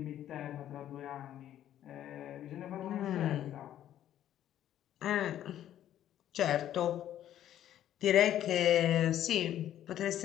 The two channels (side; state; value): right; quieter; 11.6 dB